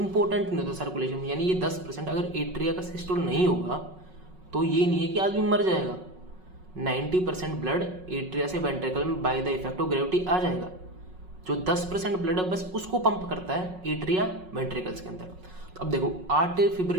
नहीं होता सर्कुलेशन में। यानी ये 10%, अगर एट्रिया का सिस्टोल नहीं होगा तो ये नहीं है कि आदमी मर जाएगा। 90% ब्लड एट्रिया से वेंट्रिकल में by the effect of gravity आ जाएगा। जो 10% ब्लड है बस उसको पंप करता है एट्रिया वेंट्रिकल्स के अंदर। तो अब देखो, आर्टरी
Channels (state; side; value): late; left; 5.4 ms